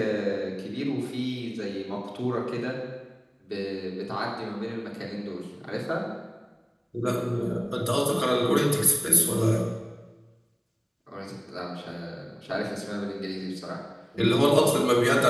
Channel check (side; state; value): both; identical; correlation 1.00